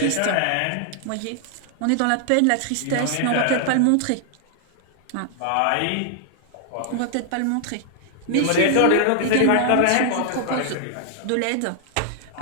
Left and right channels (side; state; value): both; different; correlation 0.00